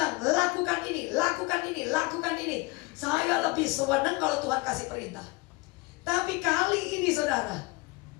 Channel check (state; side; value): quieter; right; 24.0 dB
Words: lakukan ini, lakukan ini, lakukan ini. Saya lebih senang kalau Tuhan kasih perintah. Tapi kali ini saudara,